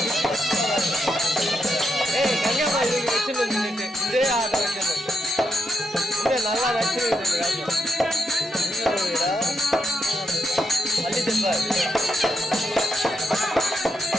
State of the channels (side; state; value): both; normal; correlation 0.82